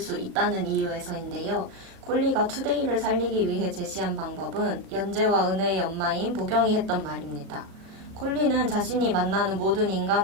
있다는 이유에서인데요. 콜리가 투데이를 살리기 위해 제시한 방법은 연재와 은혜의 엄마인 보경이 했던 말입니다. 콜리는 자신이 만나는 모든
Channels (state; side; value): late; left; 36 ms